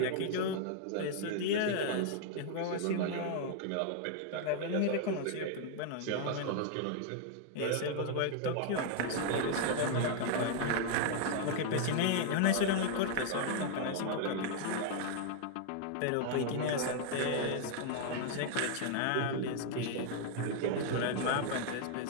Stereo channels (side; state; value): both; different; correlation 0.00